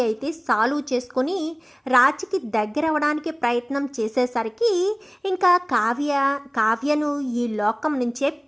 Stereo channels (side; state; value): both; identical; correlation 1.00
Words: అయితే సాల్వ్ చేసుకొని రాజ్కి దగ్గర అవ్వడానికి ప్రయత్నం చేసేసరికి ఇంకా కావ్యను ఈ లోకం నుంచే